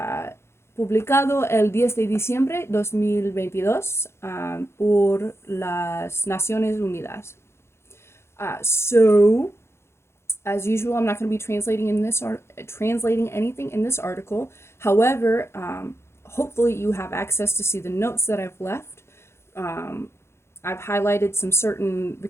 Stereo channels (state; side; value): late; right; 0.12 ms